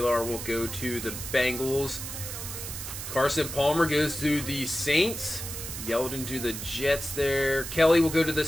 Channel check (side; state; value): right; noise; hiss, 7 dB below the sound